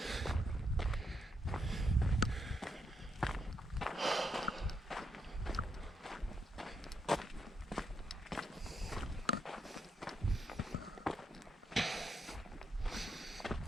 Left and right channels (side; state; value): both; normal; correlation 0.80